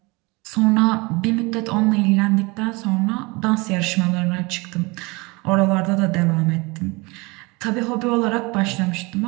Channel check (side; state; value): left; quieter; 25.8 dB